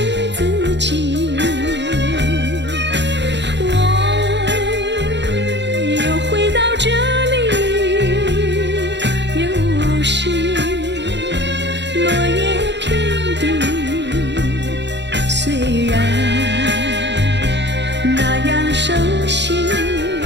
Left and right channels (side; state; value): left; late; 0.51 ms